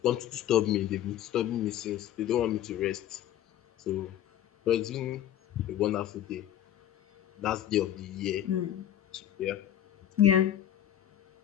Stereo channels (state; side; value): quieter; right; 11.4 dB